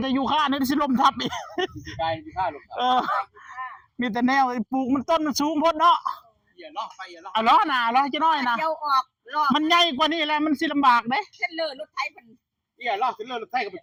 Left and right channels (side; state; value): both; identical; correlation 1.00